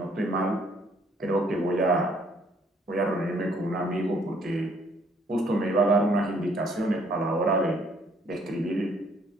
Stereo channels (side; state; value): both; normal; correlation 0.64